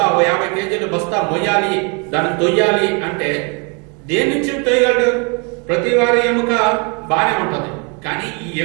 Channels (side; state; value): left; quieter; 34.0 dB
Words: 50 కేజీలు బస్తా మొయ్యాలి, దాన్ని తొయ్యాలి అంటే దేని నుంచి తొయ్యగలడు? ప్రతి వారి ఎముక బాగానే ఉంటుంది, కానీ ఈ